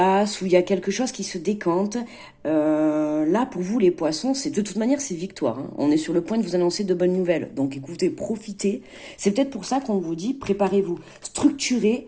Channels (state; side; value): identical; both; correlation 1.00